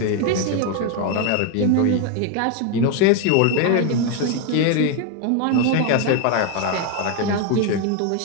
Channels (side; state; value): both; different; correlation 0.01